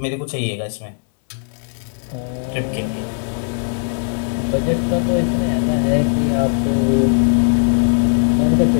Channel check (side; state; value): right; silent; digital silence